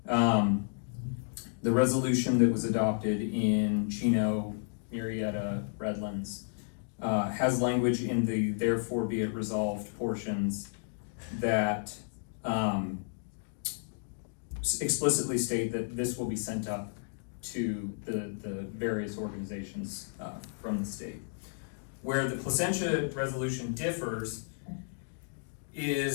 the resolution that was adopted in Chino, Murrieta, Redlands, has language in the therefore be it resolved portions that explicitly state that this will be sent up to the various organizations from the state. Where the Placentia resolution differs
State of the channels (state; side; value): silent; right; digital silence